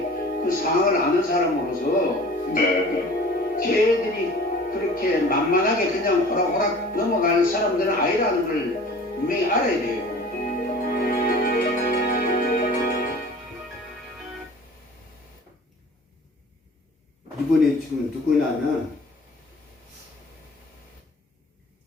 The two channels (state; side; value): normal; both; correlation 0.44